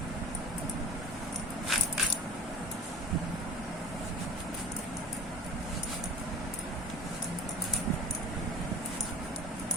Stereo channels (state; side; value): normal; both; correlation 0.38